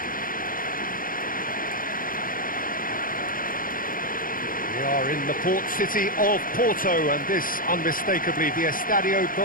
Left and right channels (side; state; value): right; late; 0.40 ms